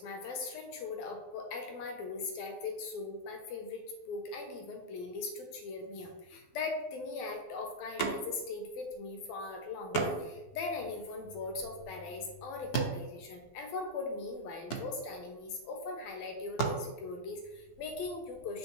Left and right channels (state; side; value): late; right; 12 ms